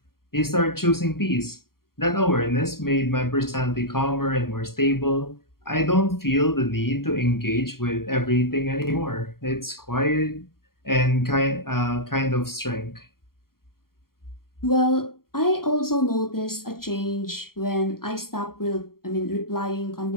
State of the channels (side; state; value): right; late; 0.93 ms